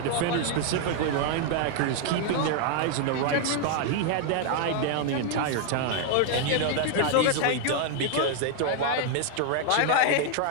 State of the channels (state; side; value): different; both; correlation 0.00